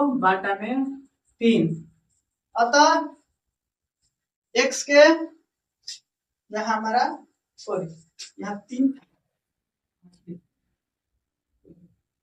अतः x के यहाँ हमारा सॉरी यहाँ 3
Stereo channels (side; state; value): both; identical; correlation 1.00